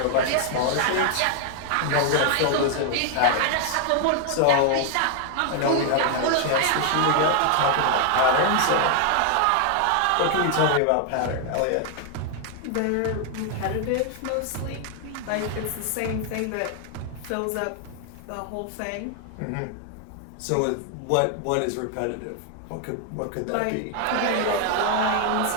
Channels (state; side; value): different; both; correlation 0.00